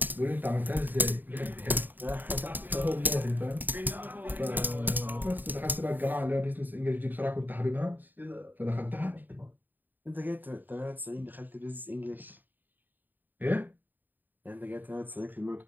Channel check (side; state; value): left; late; 0.090 ms